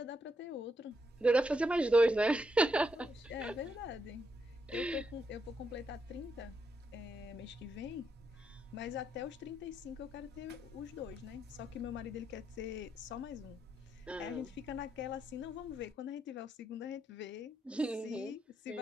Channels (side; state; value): both; normal; correlation 0.80